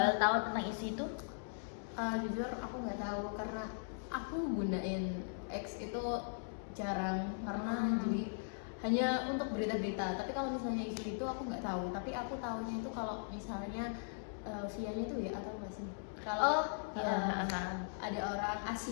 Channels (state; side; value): silent; right; digital silence